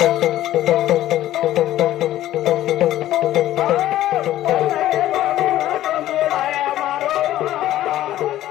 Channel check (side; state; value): right; quieter; 13.7 dB